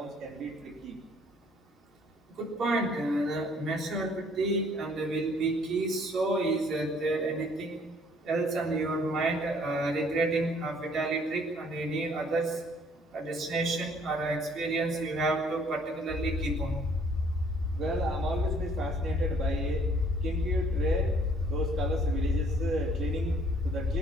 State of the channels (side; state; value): both; normal; correlation 0.60